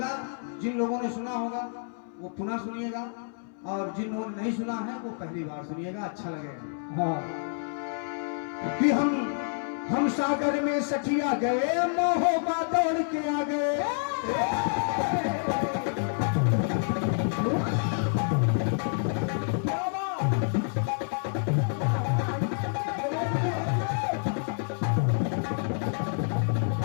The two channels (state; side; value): silent; right; 59 dB below the other